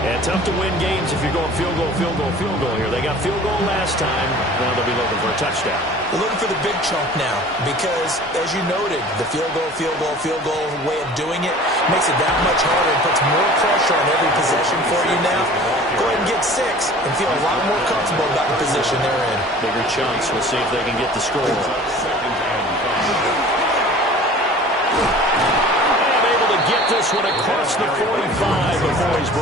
tough to win games if you're going field goal, field goal, field goal here. They got field goal last time. Now they'll be looking for a touchdown. They're looking for the big chunk now because, as you noted, the field goal way of doing it makes it that much harder and puts more pressure on every possession for you now. Go ahead and get 6 and feel a lot more comfortable about the position they're in. Bigger chunks. We'll see if they can get the score. Get this one across the 45 before he's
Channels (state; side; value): normal; both; correlation 0.45